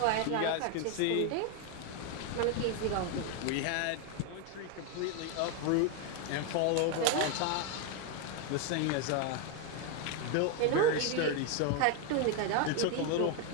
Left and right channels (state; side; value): different; both; correlation 0.01